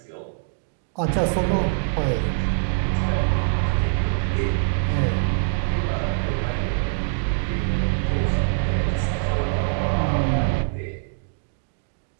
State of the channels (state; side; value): silent; left; digital silence